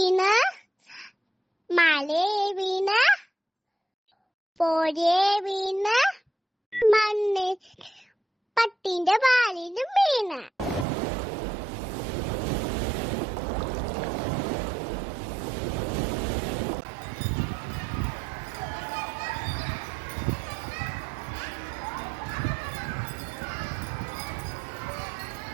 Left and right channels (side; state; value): left; drops out; at 10.9 s